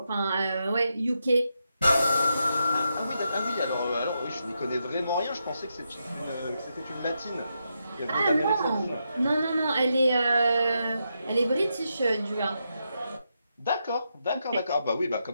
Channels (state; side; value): inverted; both; correlation -0.84